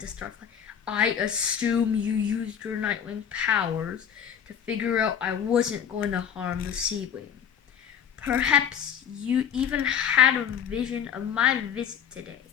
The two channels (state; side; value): quieter; right; 8.6 dB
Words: to Starflight, I assume you used your Nightwing powers to figure out I wasn't going to harm the Sea Wing. Perhaps you even had a vision of my visit today.